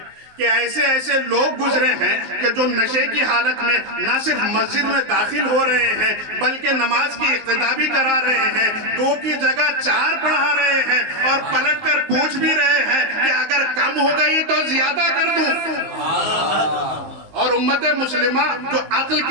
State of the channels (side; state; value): left; late; 19 ms